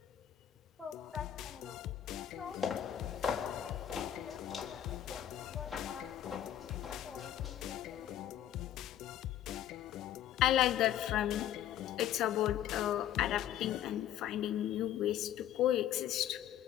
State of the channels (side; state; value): right; quieter; 11.4 dB